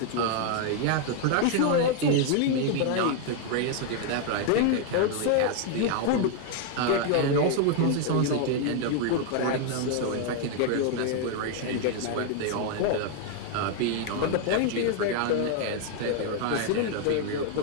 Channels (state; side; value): different; both; correlation 0.00